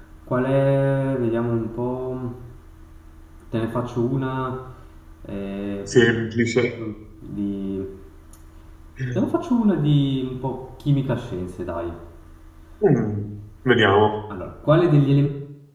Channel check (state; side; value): identical; both; correlation 1.00